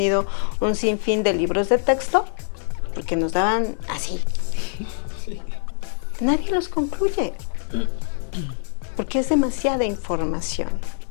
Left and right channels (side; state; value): right; silent; 59 dB below the other